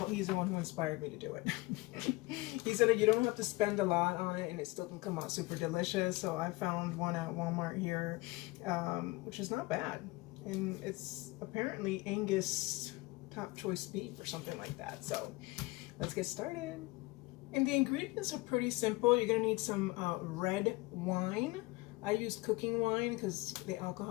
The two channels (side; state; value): right; quieter; 22.8 dB